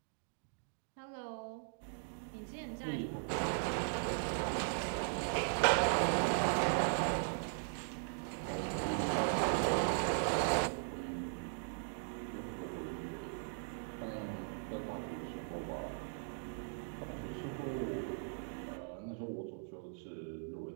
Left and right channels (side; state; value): left; silent; digital silence